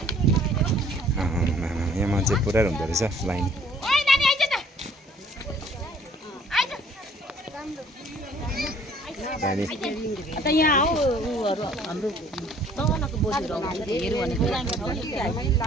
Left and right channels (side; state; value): both; normal; correlation 0.57